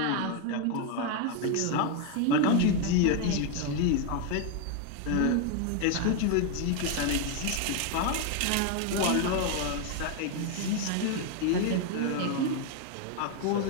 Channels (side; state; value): both; different; correlation 0.01